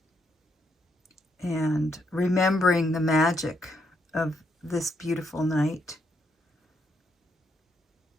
and remembering the magic of this beautiful night.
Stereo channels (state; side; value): normal; both; correlation 0.77